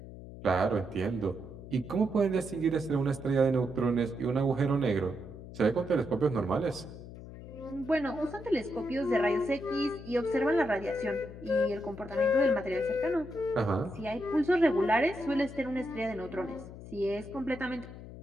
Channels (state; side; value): noise; left; hum, 14 dB below the sound